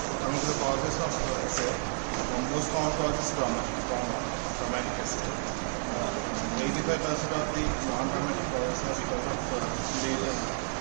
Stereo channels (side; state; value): left; silent; digital silence